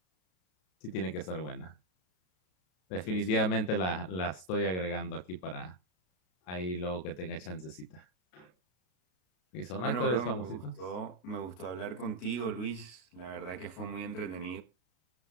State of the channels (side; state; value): right; late; 33 ms